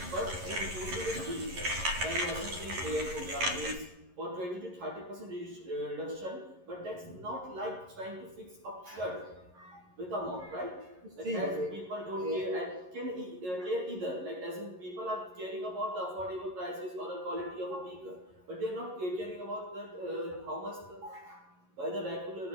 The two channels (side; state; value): left; late; 11 ms